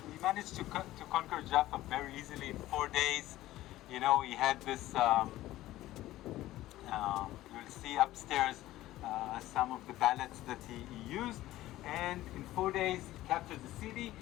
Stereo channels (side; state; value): right; quieter; 15.6 dB